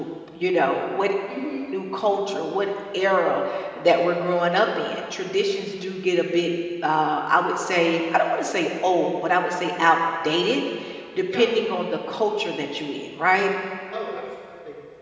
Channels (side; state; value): both; identical; correlation 1.00